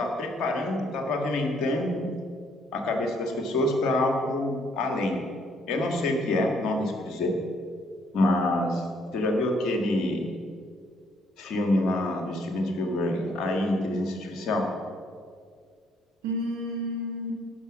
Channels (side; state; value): both; normal; correlation 0.68